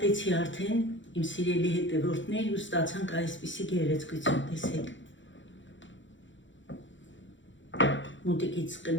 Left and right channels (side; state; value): right; late; 0.55 ms